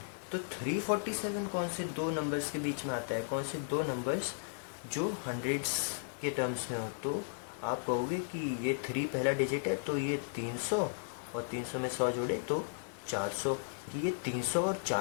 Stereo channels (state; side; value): silent; right; 54 dB below the other